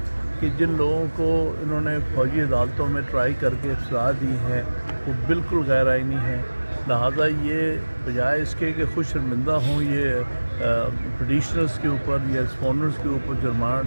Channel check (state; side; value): inverted; both; correlation -1.00